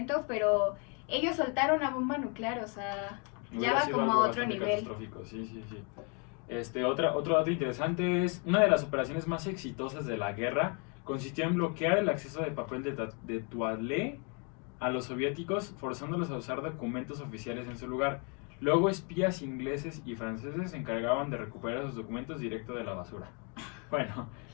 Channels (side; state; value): right; quieter; 35.4 dB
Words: pero ellos soltaron una bomba nuclear, o sea, ya va como a otro nivel. Catastrófico, sí. Otro dato interesante es, una de las operaciones más exitosas de la guerra consistió en bloquear el acceso de papel de toilette a los soviéticos, forzándolos a usar documentos oficiales en su lugar. Luego espías ingleses y franceses se encargaban de recuperar esos documentos directo de la basura. Bueno,